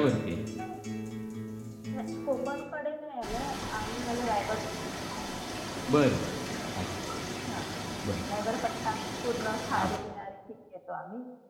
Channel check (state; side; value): identical; both; correlation 1.00